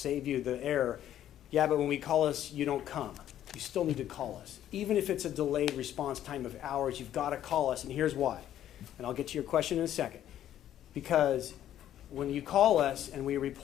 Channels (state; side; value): quieter; right; 11.5 dB